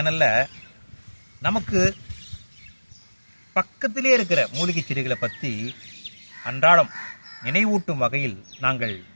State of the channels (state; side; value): inverted; both; correlation -1.00